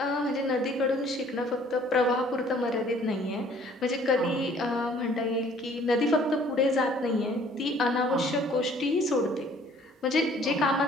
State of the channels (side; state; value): both; normal; correlation 0.56